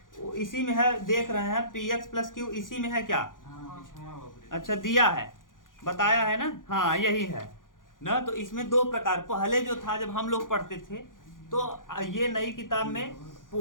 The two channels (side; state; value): right; late; 0.89 ms